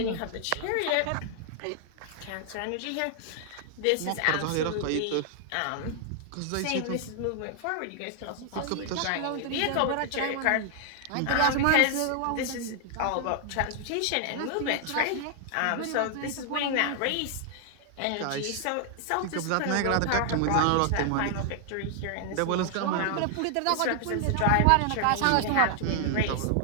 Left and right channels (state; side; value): different; both; correlation 0.00